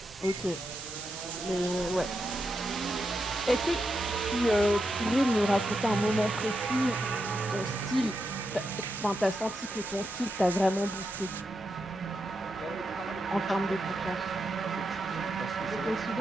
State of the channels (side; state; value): both; normal; correlation 0.85